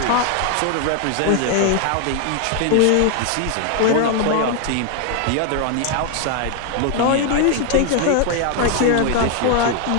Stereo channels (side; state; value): both; different; correlation 0.00